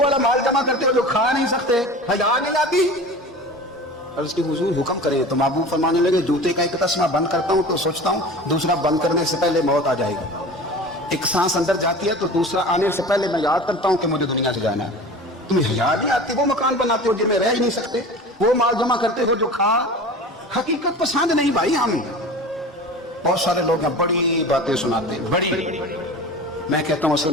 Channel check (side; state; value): both; normal; correlation 0.36